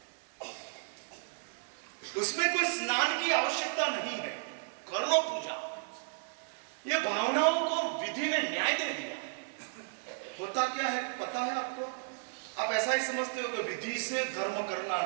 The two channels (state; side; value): silent; left; digital silence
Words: उसमें कोई स्नान की आवश्यकता नहीं है, कर लो पूजा। ये भावनाओं को विधि ने न्याय दे दिया। होता क्या है पता है आपको? आप ऐसा ही समझते हो कि विधि से धर्म करना,